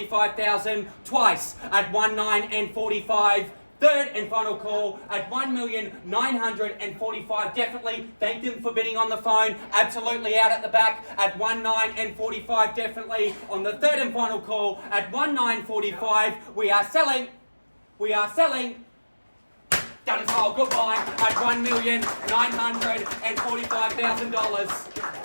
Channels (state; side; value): inverted; both; correlation -1.00